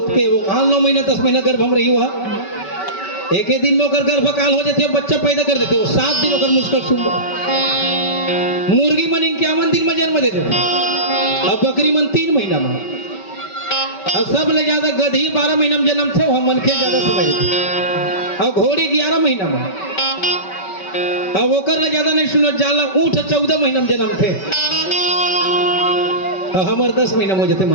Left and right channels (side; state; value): right; late; 5.2 ms